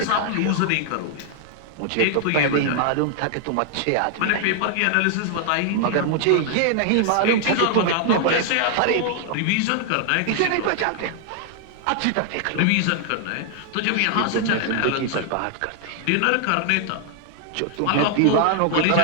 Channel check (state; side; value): different; both; correlation 0.00